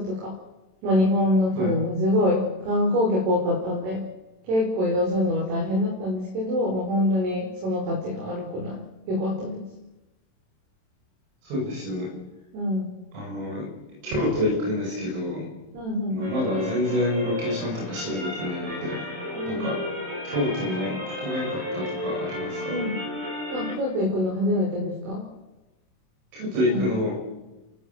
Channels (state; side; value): late; left; 27 ms